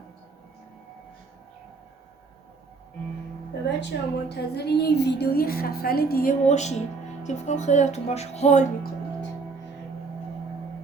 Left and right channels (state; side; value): quieter; left; 4.3 dB